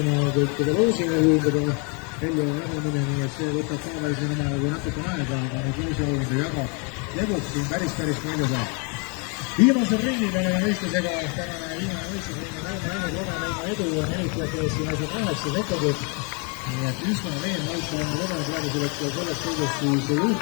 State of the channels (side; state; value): right; quieter; 34.7 dB